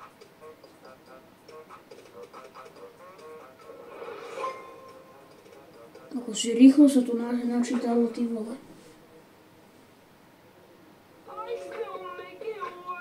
Akože rýchlo sa tu načítalo, ty vole.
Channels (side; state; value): both; identical; correlation 1.00